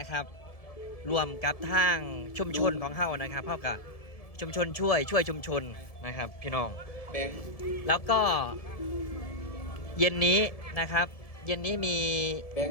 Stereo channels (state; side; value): late; right; 1.7 ms